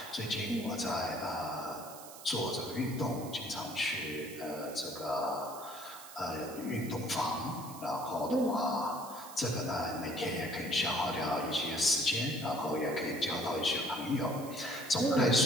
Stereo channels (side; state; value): right; noise; hiss, 15 dB below the sound